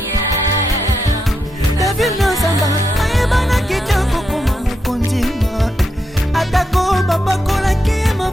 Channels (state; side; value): normal; both; correlation 0.83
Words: David Nazamba ayebana kitoko koma mokondima atako babakolaki